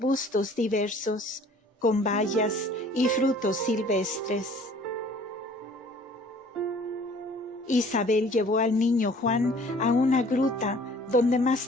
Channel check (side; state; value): both; normal; correlation 0.53